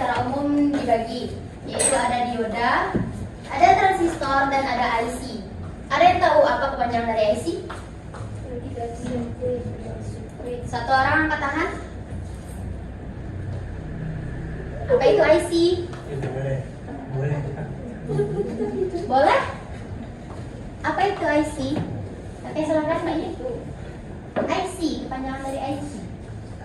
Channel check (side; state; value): both; identical; correlation 1.00